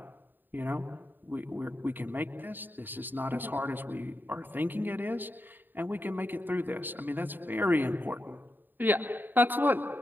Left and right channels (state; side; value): late; left; 0.092 ms